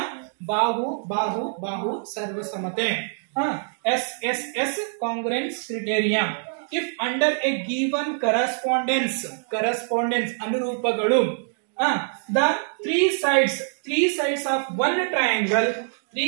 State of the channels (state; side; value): silent; left; digital silence